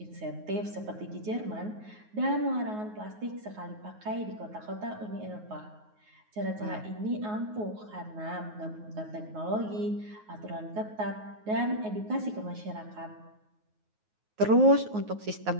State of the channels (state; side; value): late; left; 9.4 ms